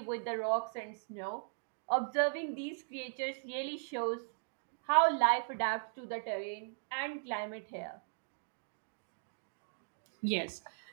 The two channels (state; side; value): silent; left; digital silence